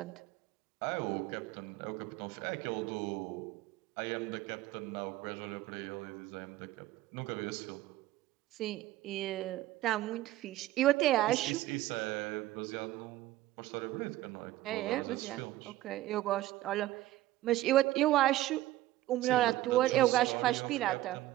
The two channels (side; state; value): left; quieter; 15.7 dB